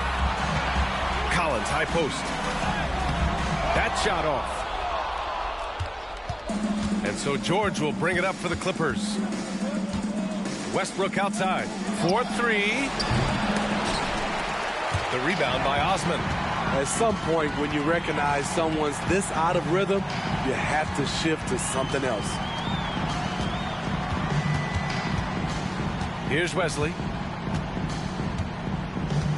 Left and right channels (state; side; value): identical; both; correlation 1.00